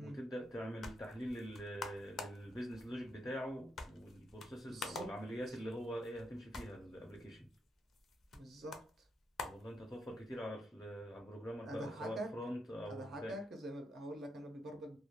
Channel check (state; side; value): normal; both; correlation 0.80